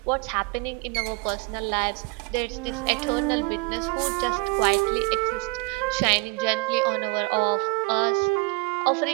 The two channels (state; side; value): quieter; left; 27.4 dB